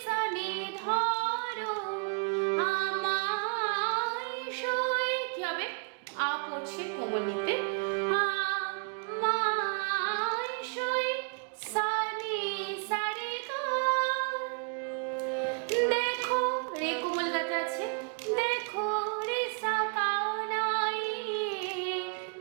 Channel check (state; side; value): quieter; left; 38.8 dB